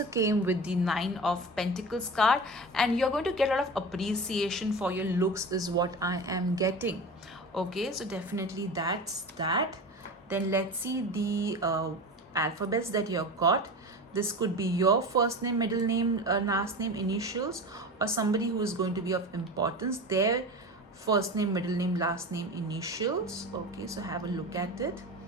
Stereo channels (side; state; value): both; normal; correlation 0.30